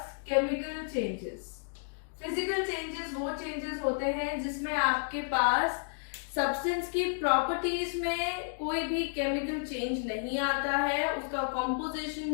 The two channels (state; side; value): silent; right; digital silence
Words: chemical changes. Physical changes वो changes होते हैं जिसमें आपके पास सब्सटेंस की प्रॉपर्टीज में कोई भी केमिकल चेंज नहीं आता है, उसका